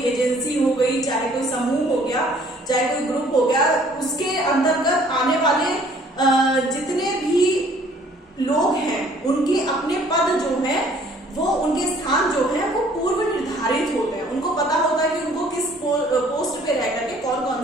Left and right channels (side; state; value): both; normal; correlation 0.57